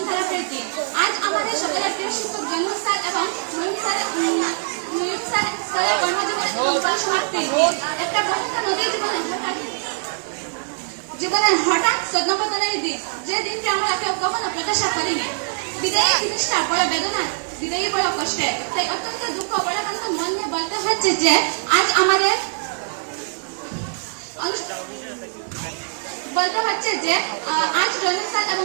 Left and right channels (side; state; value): left; silent; digital silence